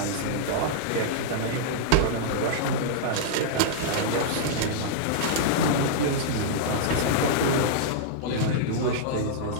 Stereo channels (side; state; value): both; different; correlation -0.02